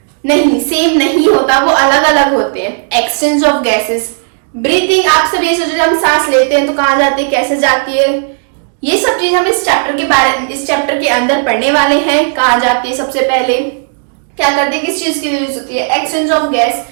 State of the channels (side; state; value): left; silent; digital silence